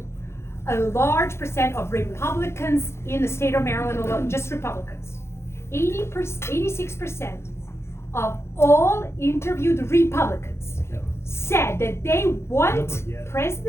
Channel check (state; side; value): late; right; 0.13 ms